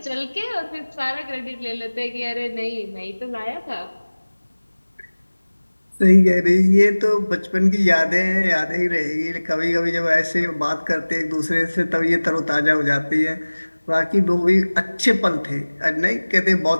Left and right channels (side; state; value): both; inverted; correlation -1.00